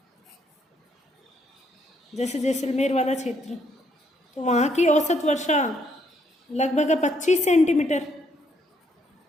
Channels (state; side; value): normal; both; correlation 0.72